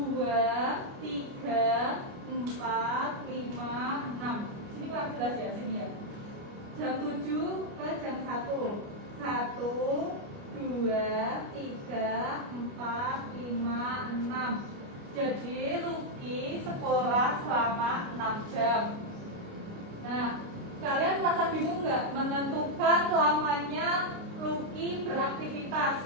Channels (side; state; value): left; late; 29 ms